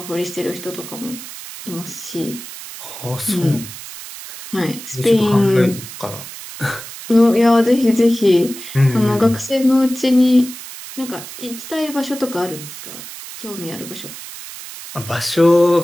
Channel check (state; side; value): noise; right; hiss, 13 dB below the sound